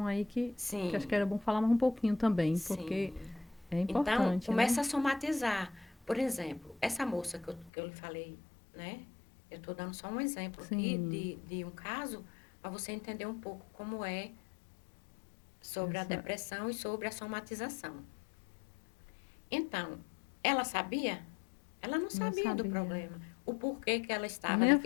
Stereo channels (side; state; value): right; drops out; at 7.7 s